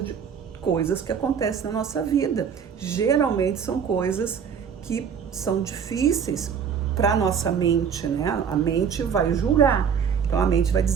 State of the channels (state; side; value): quieter; left; 7.2 dB